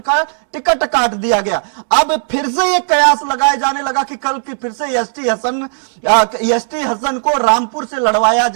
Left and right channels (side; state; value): left; silent; digital silence